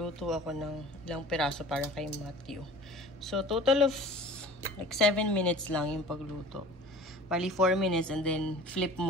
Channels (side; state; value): both; normal; correlation 0.43